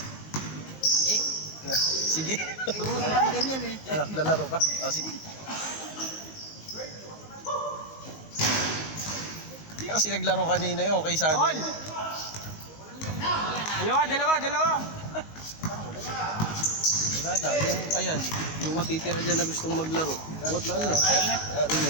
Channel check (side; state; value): right; late; 19 ms